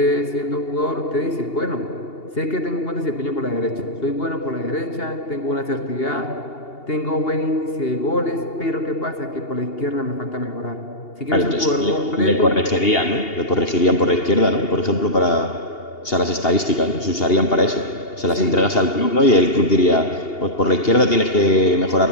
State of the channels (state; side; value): late; right; 2.8 ms